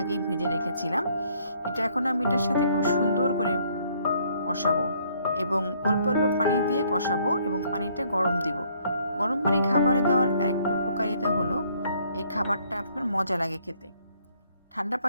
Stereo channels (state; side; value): inverted; both; correlation -0.65